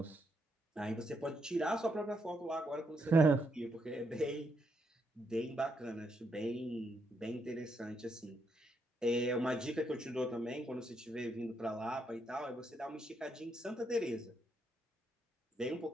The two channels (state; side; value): normal; both; correlation 0.78